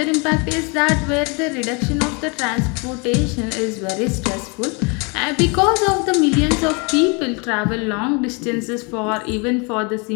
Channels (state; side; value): quieter; right; 31.7 dB